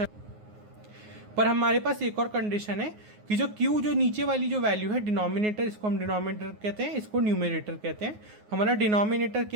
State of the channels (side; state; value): left; late; 9.5 ms